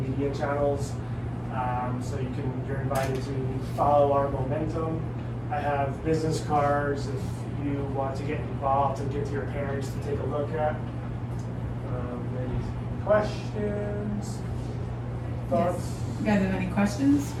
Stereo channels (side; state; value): both; identical; correlation 1.00